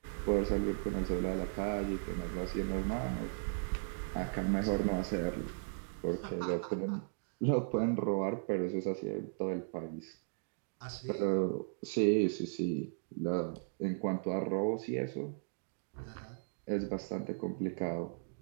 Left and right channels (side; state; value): left; silent; digital silence